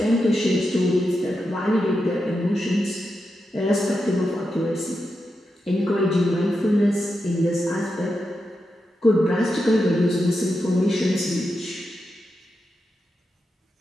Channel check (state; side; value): normal; both; correlation 0.87